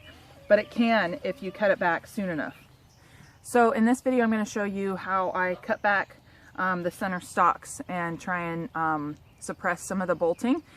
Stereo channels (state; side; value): identical; both; correlation 1.00